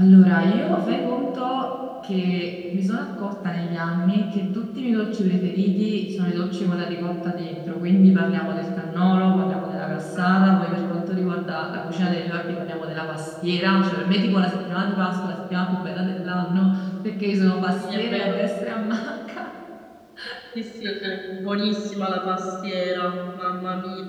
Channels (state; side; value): identical; both; correlation 1.00